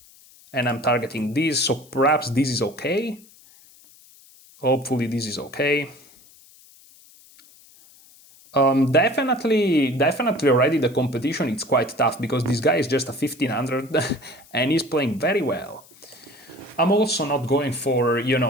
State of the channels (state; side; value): noise; left; hiss, 25 dB below the sound